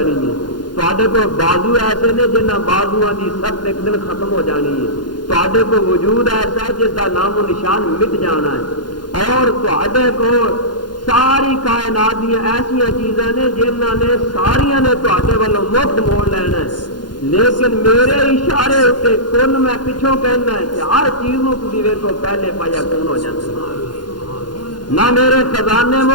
ہے، تواڈے کو بازو ایسے نے جنہاں بازوؤں دی سخت ایک دن ختم ہو جانی ہے، تواڈے کو وجود ایسا ہے جس کا نام و نشان مٹ جانا ہے، اور تواڈے کو ساری کائنات دیا ایسا چیزاں نے جنہاں نے ساریاں نے تواڈے والوں مفت موڑ لینا ہے، لیکن میرے اشارے اتنے کن میں پچھوں کہنا ہے کہ ہر چیز کو تسی ویکھو پہلے پایا کون ہو جاتا ہے۔ نہ میرے خزانے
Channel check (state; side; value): late; right; 0.71 ms